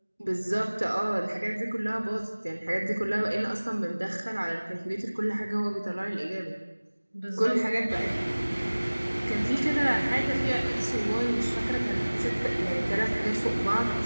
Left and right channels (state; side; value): inverted; both; correlation -1.00